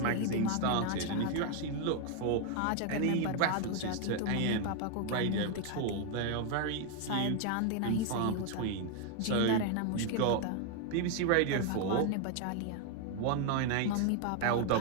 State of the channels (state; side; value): different; both; correlation 0.00